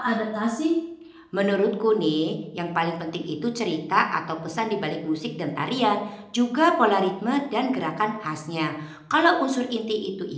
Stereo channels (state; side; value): identical; both; correlation 1.00